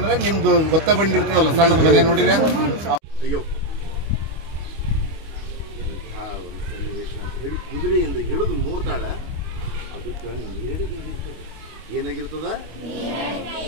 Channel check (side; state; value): left; late; 25 ms